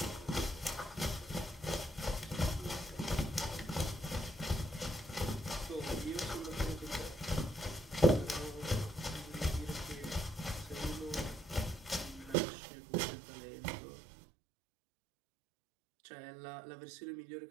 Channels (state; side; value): drops out; left; at 12.4 s